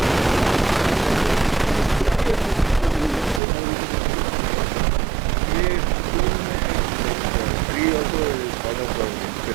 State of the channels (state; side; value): drops out; left; at 3.4 s